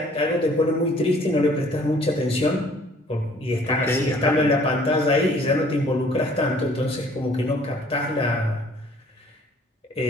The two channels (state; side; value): normal; both; correlation 0.56